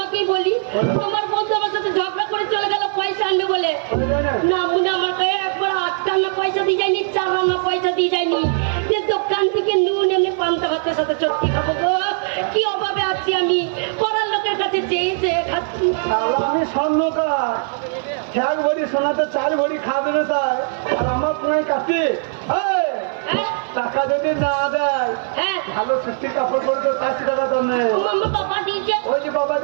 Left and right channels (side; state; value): left; silent; 56 dB below the other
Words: বলি। তোমার বন্ধু আমার সাথে ঝগড়া করে চলে গেল পয়সা আনবে বলে, না মনে আমার কাছে একবার 8 আনা পয়সা দিয়ে যায়নি, 4 আনা পয়সা দিয়ে যায়নি, যে দোকান থেকে নুন এমনি পান্তা ভাতের সাথে চটকি খাবো গো। কি অভাবে আছি আমি, পড়ার লোকের কাছে চেয়ে চেয়ে খাচ্ছি। আমি স্বর্ণকার, 1 ভরি সোনাতে 4 ভরি খাবে না, তাই আর আমার পুরাই কাছে হ্যাঁ টাকা যদি না দেয়, হ্যাঁ ভালো সত্যি কাপড় পরে তো 400 টাকা দাম নেই। মাম্মা বাবা দিয়েছে, ওই যে বাবা